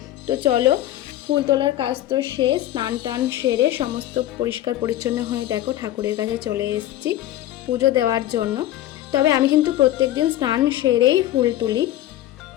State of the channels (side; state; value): right; quieter; 13.7 dB